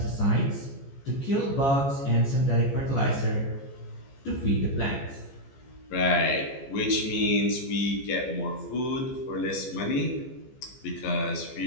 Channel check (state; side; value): late; right; 15 ms